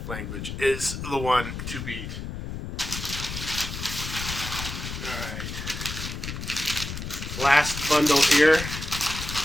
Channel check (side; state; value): left; noise; rumble, 7 dB below the sound